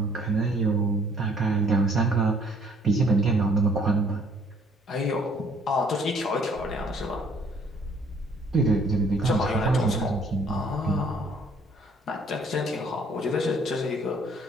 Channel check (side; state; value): both; normal; correlation 0.60